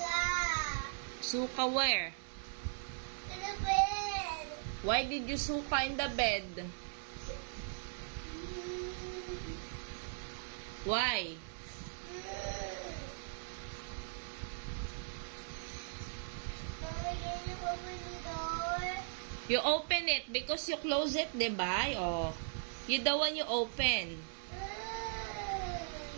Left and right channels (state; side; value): silent; left; digital silence